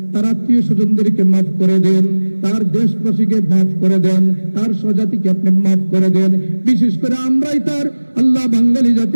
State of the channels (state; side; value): inverted; both; correlation -1.00